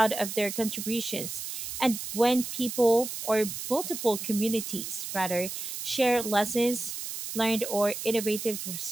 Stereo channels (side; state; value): right; noise; hiss, 6 dB below the sound